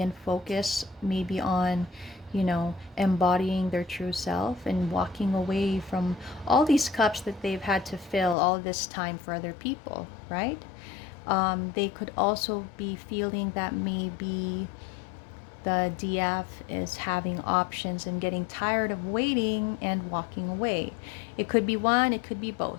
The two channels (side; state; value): right; drops out; at 8.3 s